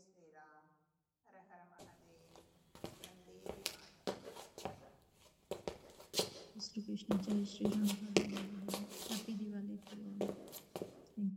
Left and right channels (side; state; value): both; identical; correlation 1.00